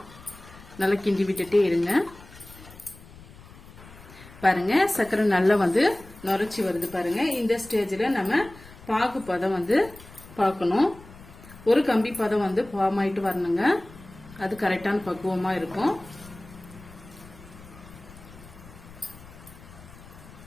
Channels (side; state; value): left; noise; rumble, 20 dB below the sound